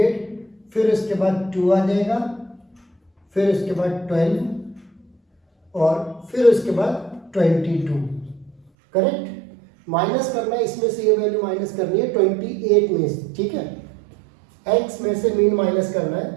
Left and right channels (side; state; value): left; drops out; at 8.6 s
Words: फिर उसके बाद 2 आ जाएगा, फिर उसके बाद 12 और फिर उसके बाद 22, करेक्ट। माइनस करना है इसमें से, ये वैल्यू माइनस करनी है 28 में से, ठीक है। x में से मीन माइनस करना